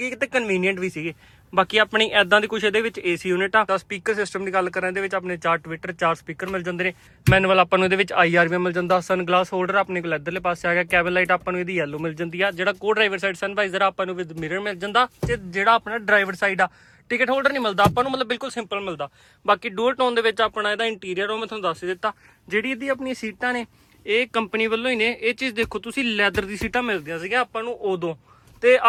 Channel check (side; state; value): both; identical; correlation 1.00